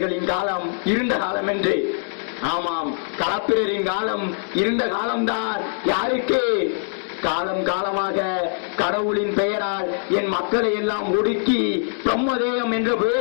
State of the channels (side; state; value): right; silent; digital silence